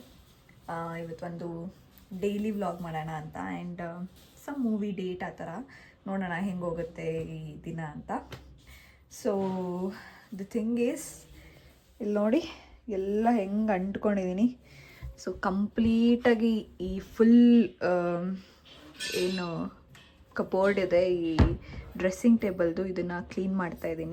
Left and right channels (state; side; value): identical; both; correlation 1.00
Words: ಇವತ್ತೊಂದು daily vlog ಮಾಡೋಣ ಅಂತ ಆ್ಯಂಡ್ ಸಮ್ ಮೂವಿ ಡೇಟ್ ಆ ಥರ ನೋಡೋಣ ಹೆಂಗೆ ಹೋಗುತ್ತೆ ಈ ದಿನ ಅಂತ. ಸೊ ದ ಥಿಂಗ್ ಈಸ್, ಇಲ್ಲಿ ನೋಡಿ ಎಲ್ಲ ಹೆಂಗೆ ಅಂಟ್ಕೊಂಡಿದ್ದೀನಿ. ಸೊ ಕಂಪ್ಲೀಟಾಗಿ ಈ ಫುಲ್ ಏನು ಕಬೋರ್ಡ್ ಇದೆ, ಈ ಡ್ರೆಸ್ಸಿಂಗ್ ಟೇಬಲ್ದು, ಇದನ್ನು ಕ್ಲೀನ್ ಮಾಡ್ತಾ